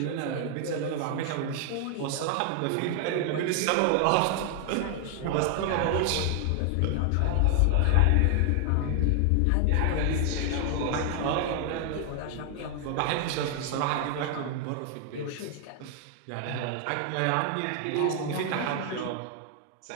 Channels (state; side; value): different; both; correlation 0.00